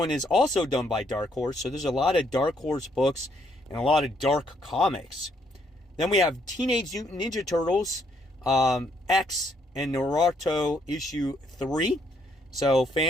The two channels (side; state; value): both; normal; correlation 0.71